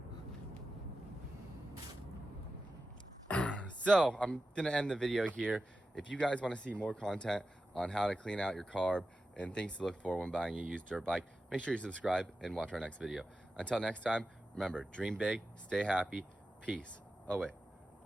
So I'm gonna end the video here. If you guys want to see more content on how to clean out your carb and things to look for when buying a used dirt bike, make sure you subscribe and watch our next video. Until next time, remember, dream big, stay happy, peace. Oh wait,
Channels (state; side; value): normal; both; correlation 0.92